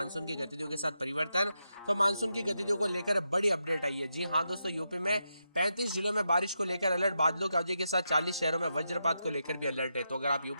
की गतिविधियों के साथ परिवर्तन। तो मानसून की गतिविधियों को लेकर बड़ी अपडेट आई है। जी हां दोस्तों, यूपी में 35 जिलों में बारिश को लेकर अलर्ट, बादलों की अवधि के साथ 40 शहरों में वज्रपात को लेकर भी अलर्ट है। तो अगर आप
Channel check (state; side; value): inverted; both; correlation -0.86